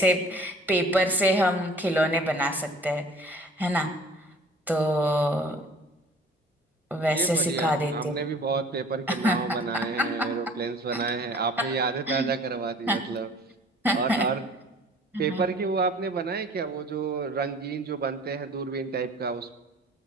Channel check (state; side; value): normal; both; correlation 0.49